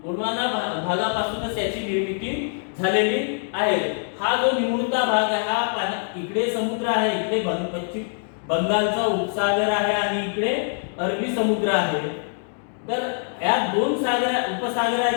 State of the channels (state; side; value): silent; right; 63 dB below the other